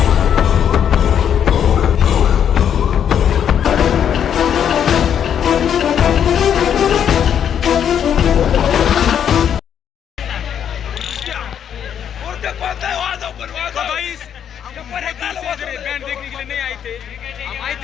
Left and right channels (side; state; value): right; quieter; 8.8 dB